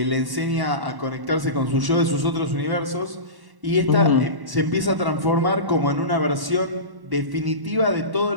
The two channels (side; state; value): left; late; 1.1 ms